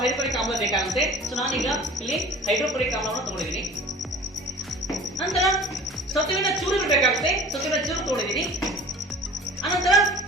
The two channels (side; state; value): both; normal; correlation 0.43